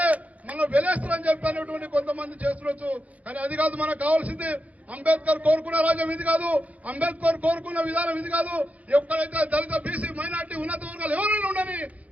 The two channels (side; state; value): left; late; 0.069 ms